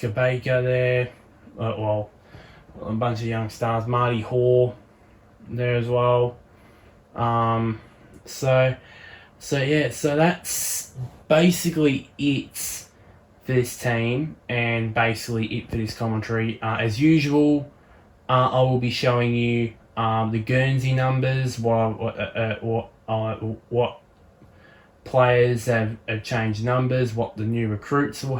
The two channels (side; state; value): both; identical; correlation 1.00